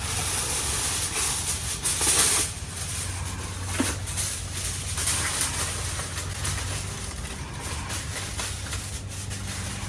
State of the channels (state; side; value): identical; both; correlation 1.00